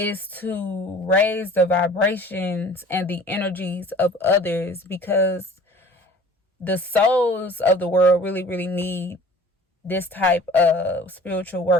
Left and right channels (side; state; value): both; normal; correlation 0.46